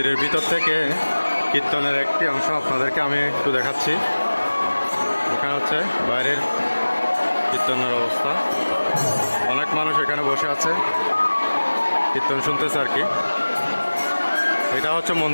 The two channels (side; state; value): both; inverted; correlation -1.00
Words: ভিতর থেকে কীর্তনের একটি অংশ আপনাদেরকে আমি একটু দেখাচ্ছি। এখানে হচ্ছে বাইরের কীর্তনের অবস্থা, অনেক মানুষ এখানে বসে আছে কীর্তন শুনতেছে আর কি। এটা হচ্ছে